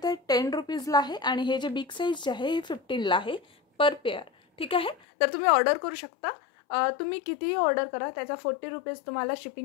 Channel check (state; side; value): drops out; right; at 5.0 s